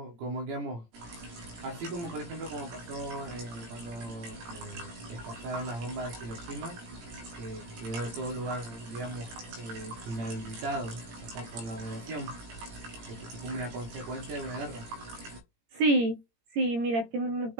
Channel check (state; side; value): late; left; 17 ms